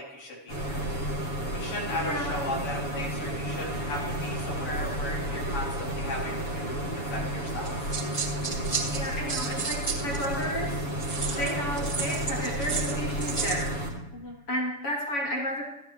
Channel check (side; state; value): right; late; 7.1 ms